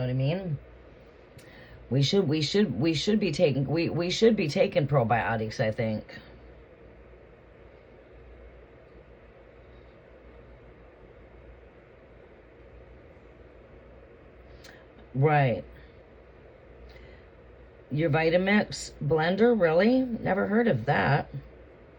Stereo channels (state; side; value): identical; both; correlation 1.00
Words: what I mean? We should be taking probiotics, I think. Right. Your Vitamix blender, really? Never heard of that.